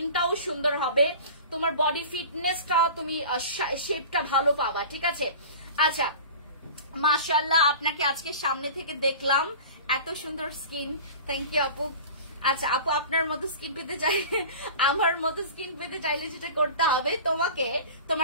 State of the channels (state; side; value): inverted; both; correlation -0.38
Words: সুন্দর হবে, তোমার বডি ফিটনেসটা, তুমি শেপটা ভালো পাবা। ঠিক আছে, আচ্ছা মাশাআল্লাহ, আপনাকে আজকে সামনে থেকে দেখলাম, এত সুন্দর স্কিন, থ্যাংক ইউ আপু। আচ্ছা আপু, আপনার মতো স্কিন পেতে চাইলে, আমার মতো স্কিন পেতে চাইলে যেটা করতে হবে, তোমাকে